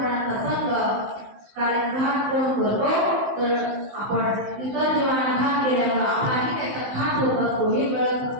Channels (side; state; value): left; late; 15 ms